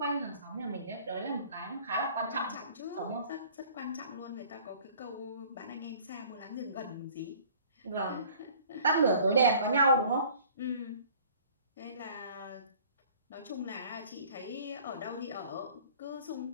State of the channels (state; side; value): inverted; both; correlation -0.51